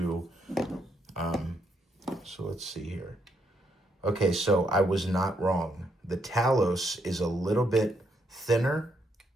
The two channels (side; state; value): both; normal; correlation 0.76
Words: so let's see here. Okay, so I was not wrong. The Talos is a little bit thinner